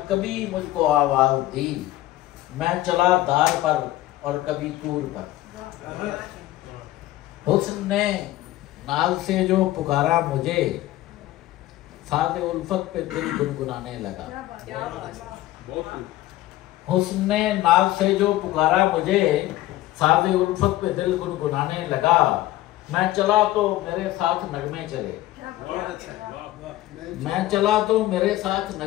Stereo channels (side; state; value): right; quieter; 15.8 dB